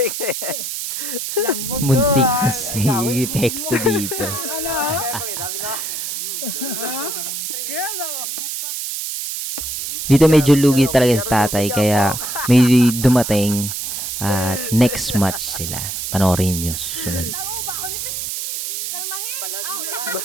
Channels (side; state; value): right; noise; hiss, 4 dB below the sound